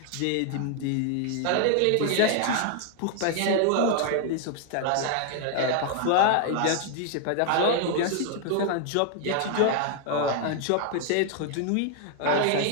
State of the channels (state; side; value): different; both; correlation 0.00